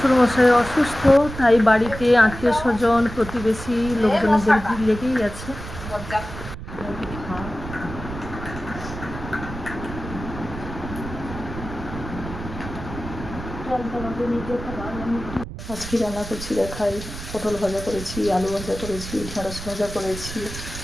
অসুস্থ, তাই বাড়িতে আত্মীয় স্বজন প্রতিবেশী লোকজনদের ভিড় লেগেই আছে। আজকে রান্না করছি দেখাই, পটল ভাজা করেছি, আলু ভাজা করেছি, ঢেঁড়স ভাজা করেছি,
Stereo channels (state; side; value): noise; right; rumble, 10 dB below the sound